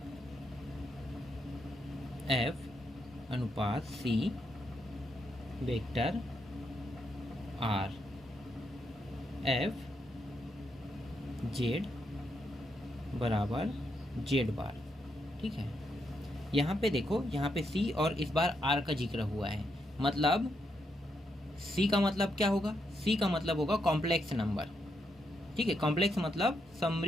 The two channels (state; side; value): normal; both; correlation 0.80